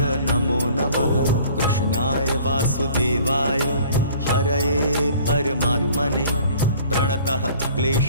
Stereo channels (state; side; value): inverted; both; correlation -0.51